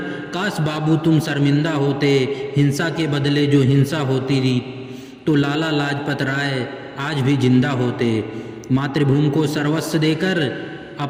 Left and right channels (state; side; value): identical; both; correlation 1.00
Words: काश बाबू तुम शर्मिंदा होते। हिंसा के बदले जो हिंसा होती रही तो लाला लाजपत राय आज भी जिंदा होते। मातृभूमि को सर्वस्व देकर